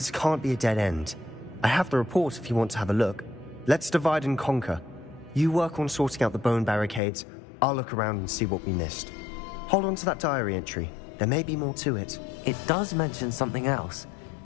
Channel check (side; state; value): right; drops out; at 7.0 s